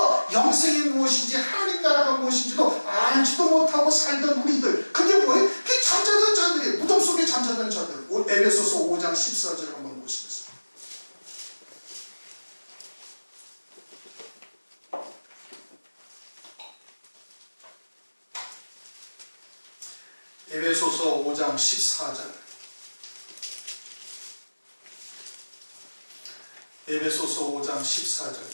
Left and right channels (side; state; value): both; inverted; correlation -1.00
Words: 영생이 무엇인지 하나님 나라가 무엇인지도 알지도 못하고 살던 우리들, 그게 뭐예요? 그게 잠자던 자들이에요. 무덤 속에 잠자던 자들. 에베소서 5장 14절을 한번 보시겠습니다. 에베소서 5장 14절. 에베소서 5장 14절